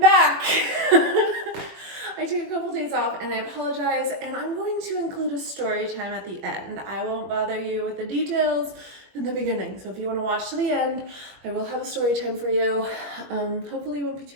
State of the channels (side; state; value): left; late; 21 ms